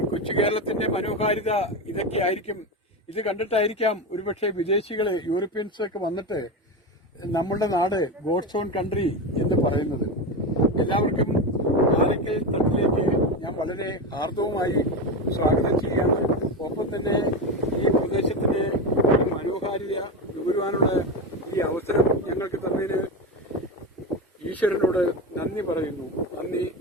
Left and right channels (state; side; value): normal; both; correlation 0.17